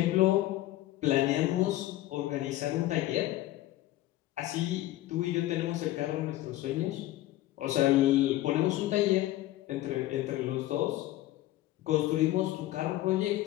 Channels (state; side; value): quieter; right; 15.7 dB